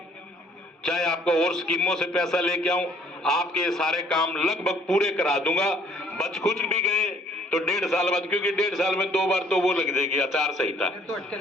चाहे आपको और स्कीमों से पैसा लेके आऊं, आपके ये सारे काम लगभग पूरे करा दूंगा। बच कुछ भी गए तो 1.5 साल बाद, क्योंकि 1.5 साल में 2 बार तो वो लग जाएगी आचार संहिता,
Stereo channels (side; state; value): both; normal; correlation 0.60